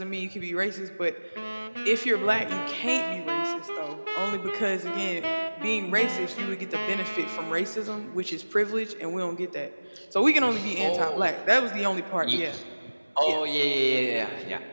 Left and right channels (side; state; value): both; inverted; correlation -1.00